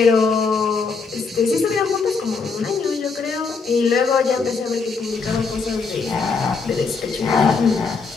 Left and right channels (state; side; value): quieter; right; 4.7 dB